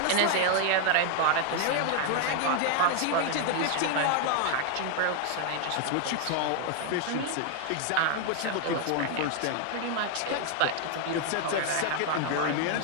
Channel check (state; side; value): different; both; correlation 0.00